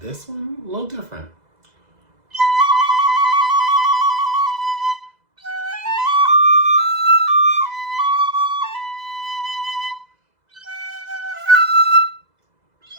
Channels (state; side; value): late; left; 2.0 ms